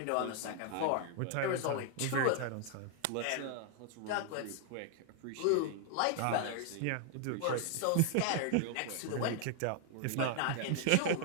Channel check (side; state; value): both; different; correlation 0.00